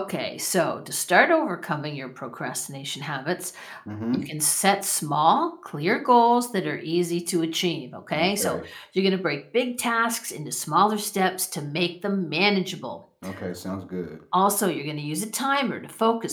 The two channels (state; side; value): identical; both; correlation 1.00